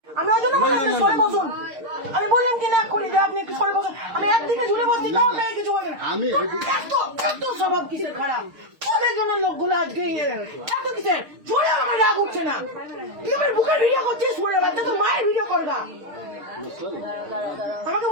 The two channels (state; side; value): late; left; 6.5 ms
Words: আমি ওই জন্য বললাম সরে বসুন। আমি বললাম কি না করি যে আপনি একটু সরে বসুন। আমি একদিকে ঝুলে বসছি তাও আপনাকে কিছু বলবেন না। এত স্বভাব কিসের খারাপ? তোদের জন্য লোকগুলো আজকে এত কিসের ঝুলে আমার রাগ উঠছে না। তুই আমার বুকের ভিডিও করছিস, সরে বাচ্চা তো মায়ের ভিডিও করবা, আমাকে